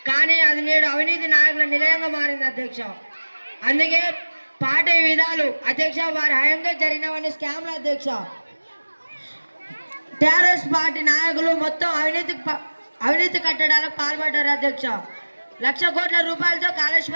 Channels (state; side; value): inverted; both; correlation -1.00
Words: కానీ అది నేడు అవినీతి నాయకుల నిలయంగా మారింది అధ్యక్ష. అందుకే పార్టీ విధాలు అధ్యక్ష వారి హయాంలో జరిగినవన్నీ స్కామ్లు అధ్యక్ష. టీఆర్ఎస్ పార్టీ నాయకులు మొత్తం అవినీతి కట్టడాలకు పాల్పడ్డారు అధ్యక్ష. 1,00,000 కోట్ల రూపాయలతో